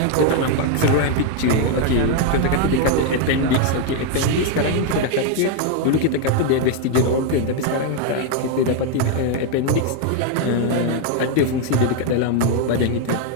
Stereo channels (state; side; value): different; both; correlation 0.01